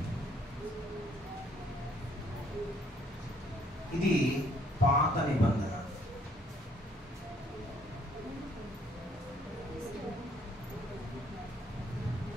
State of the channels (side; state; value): both; normal; correlation 0.65